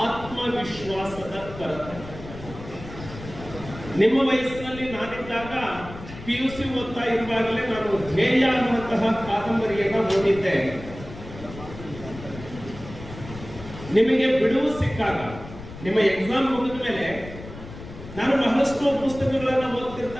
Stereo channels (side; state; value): left; noise; rumble, 14 dB below the sound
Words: ಆತ್ಮವಿಶ್ವಾಸದ ಕೊರತೆ. ನಿಮ್ಮ ವಯಸ್ಸಿನಲ್ಲಿ ನಾನಿದ್ದಾಗ PUC ಓದ್ತಾ ಇರುವಾಗಲೇ ನಾನು ಧ್ಯೇಯ ಅನ್ನುವಂತಹ ಕಾದಂಬರಿಯನ್ನ ಓದಿದ್ದೆ. ನಿಮಗೆ ಬಿಡುವು ಸಿಕ್ಕಾಗ, ನಿಮ್ಮ ಎಕ್ಸಾಮ್ ಮುಗಿದ ಮೇಲೆ ನಾನು ಬಹಳಷ್ಟು ಪುಸ್ತಕಗಳನ್ನ